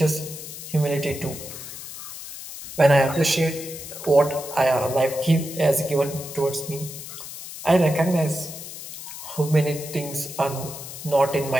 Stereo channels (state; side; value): noise; left; hiss, 11 dB below the sound